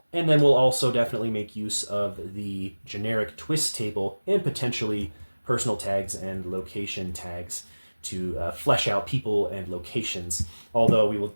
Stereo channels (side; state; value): both; inverted; correlation -1.00